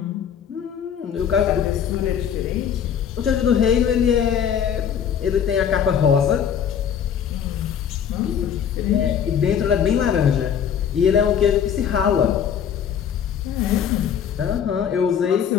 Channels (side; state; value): right; quieter; 8.2 dB